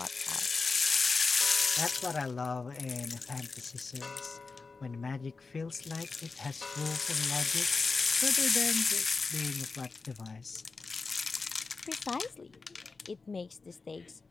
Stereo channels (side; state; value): right; quieter; 4.2 dB